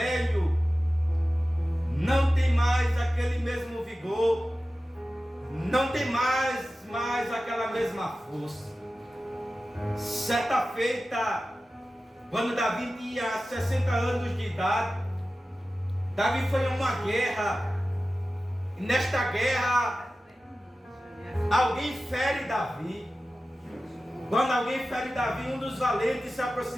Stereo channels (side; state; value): both; normal; correlation 0.95